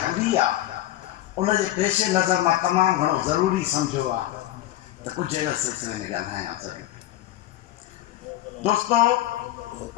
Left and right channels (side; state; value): right; quieter; 14.4 dB